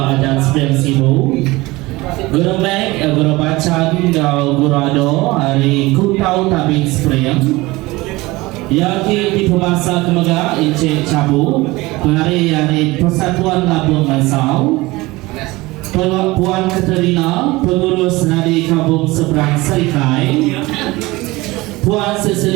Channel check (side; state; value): left; quieter; 21.0 dB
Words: adat Sepiang Sibu. Guru Mek, Guru Bacan, Guru Ado hari Kutau Tabing Spring. Yang di pemasa kemega Encik Cabu penari dari Persatuan Labuan Bansau, Puan Katerina pengurus dari Kampung Seberang Serikai, Puan